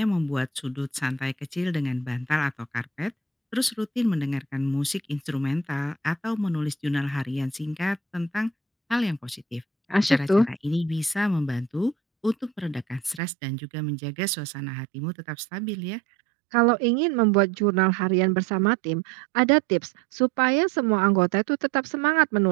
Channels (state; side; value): drops out; left; at 13.2 s